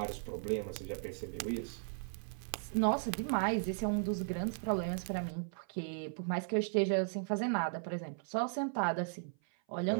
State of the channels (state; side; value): silent; left; 53 dB below the other